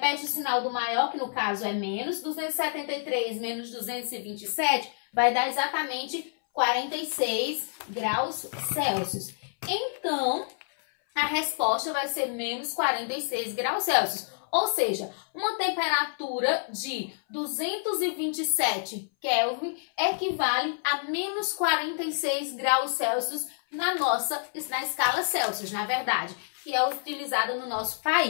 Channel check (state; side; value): silent; right; 59 dB below the other